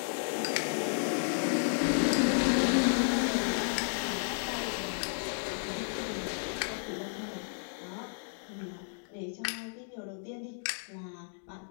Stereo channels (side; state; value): right; silent; digital silence